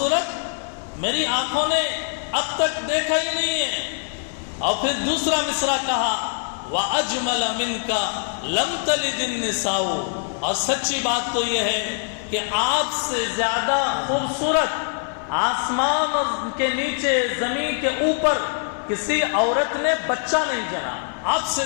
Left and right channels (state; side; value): silent; right; digital silence